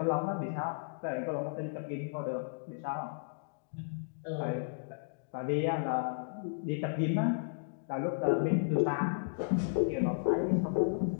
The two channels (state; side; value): silent; right; digital silence